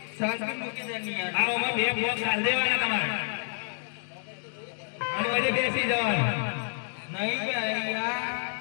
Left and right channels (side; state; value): right; silent; digital silence